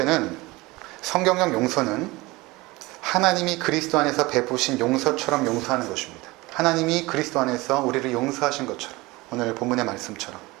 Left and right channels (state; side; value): quieter; left; 21.7 dB